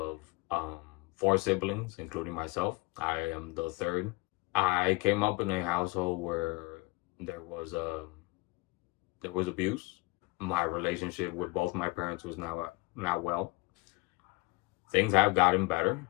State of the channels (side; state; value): right; quieter; 24.5 dB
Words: um, four siblings, including myself. I am the third. I came up in a household where there was there was abuse. My relationship with both my parents was not well. Things have gotten better,